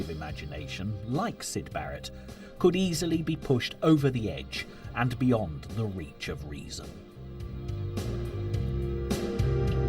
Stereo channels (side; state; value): both; identical; correlation 1.00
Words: imagination, like Syd Barrett, could easily be pushed over the edge and beyond the reach of reason.